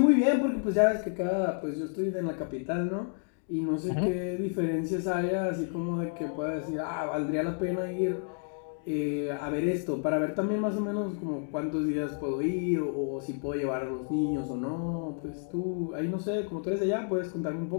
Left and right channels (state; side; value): silent; right; 58 dB below the other